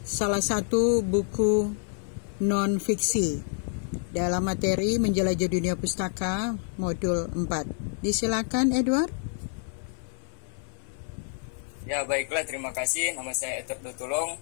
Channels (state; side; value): silent; right; 59 dB below the other